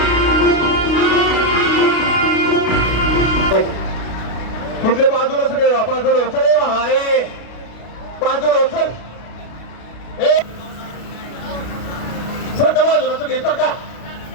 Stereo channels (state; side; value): late; right; 32 ms